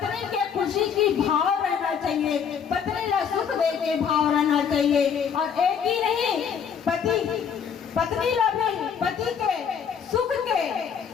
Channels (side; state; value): right; quieter; 7.3 dB